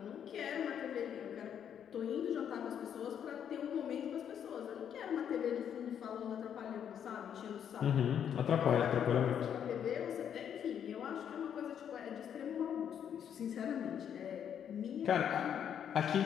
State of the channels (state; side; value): quieter; right; 8.8 dB